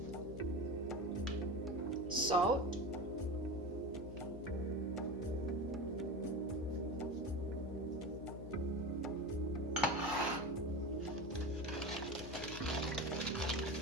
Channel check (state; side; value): noise; left; hum, 10 dB below the sound